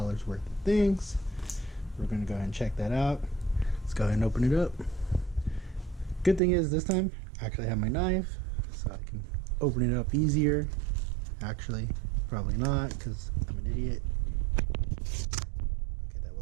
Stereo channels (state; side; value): drops out; left; at 6.4 s